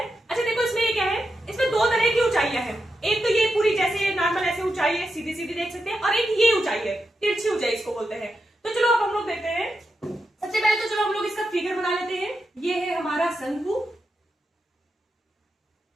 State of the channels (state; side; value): normal; both; correlation 0.87